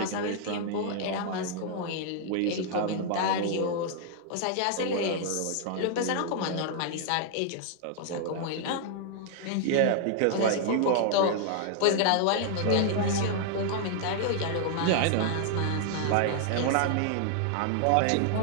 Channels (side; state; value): both; different; correlation 0.00